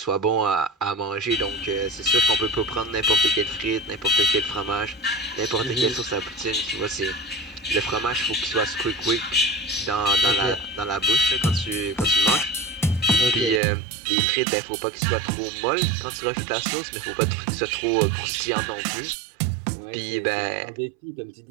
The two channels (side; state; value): left; drops out; at 13.6 s